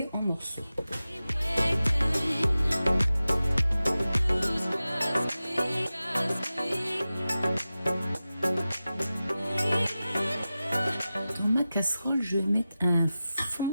en morceaux. Dans ma casserole, je vais mettre un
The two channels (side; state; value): both; inverted; correlation -0.94